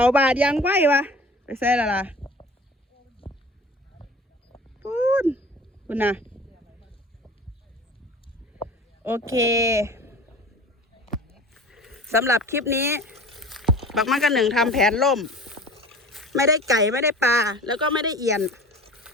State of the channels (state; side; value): normal; both; correlation 0.41